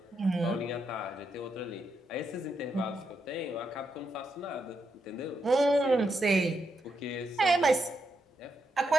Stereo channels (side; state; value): both; normal; correlation 0.82